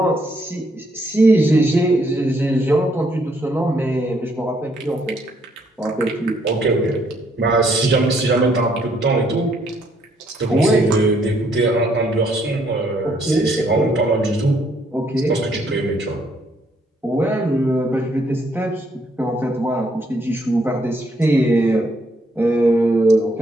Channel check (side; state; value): both; normal; correlation 0.70